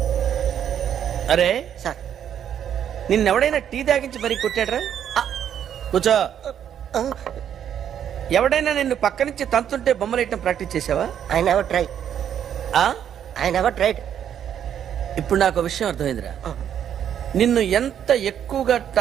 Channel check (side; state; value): left; quieter; 9.4 dB